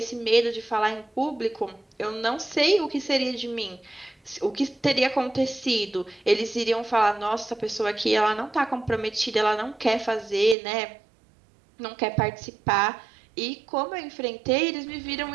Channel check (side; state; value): left; drops out; at 10.6 s